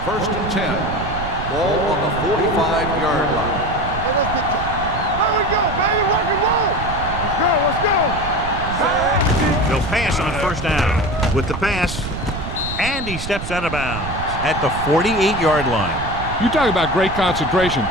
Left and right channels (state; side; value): noise; right; rumble, 7 dB below the sound